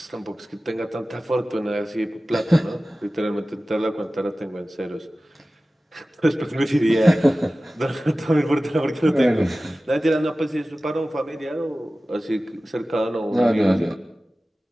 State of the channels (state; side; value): normal; both; correlation 0.96